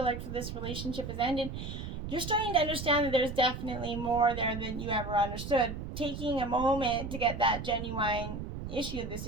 like for this relationship has ended, you're starting to understand that there's definitely more there than you ever understood. Taking a moment to get that genuine issue of the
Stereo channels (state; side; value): noise; right; rumble, 7 dB below the sound